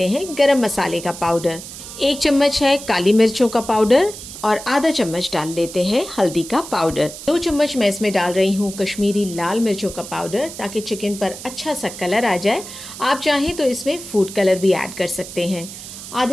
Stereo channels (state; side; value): noise; right; hiss, 12 dB below the sound